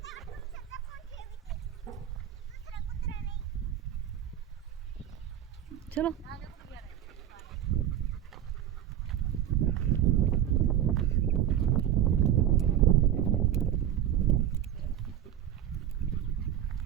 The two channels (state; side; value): quieter; left; 10.9 dB